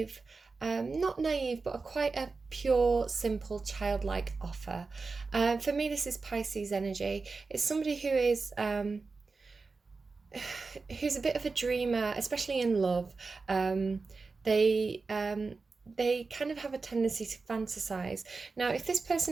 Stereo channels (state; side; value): quieter; left; 4.2 dB